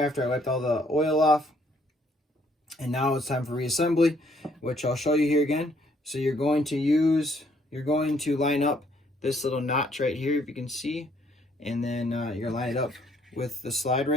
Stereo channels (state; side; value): normal; both; correlation 0.66